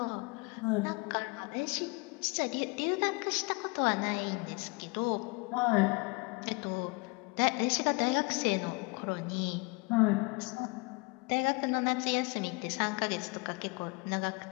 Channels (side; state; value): right; quieter; 28.5 dB